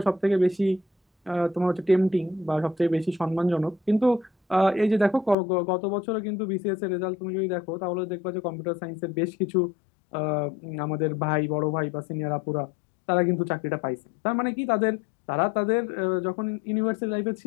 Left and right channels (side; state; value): right; drops out; at 5.4 s